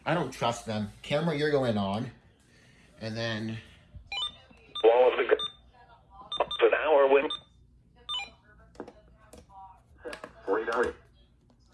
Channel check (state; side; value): identical; both; correlation 1.00